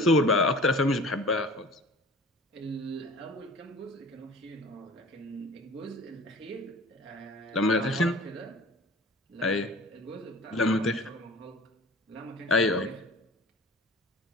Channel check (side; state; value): both; normal; correlation 0.44